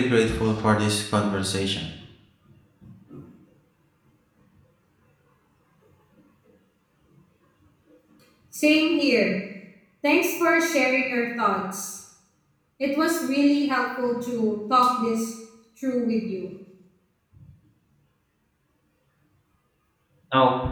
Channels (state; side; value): identical; both; correlation 1.00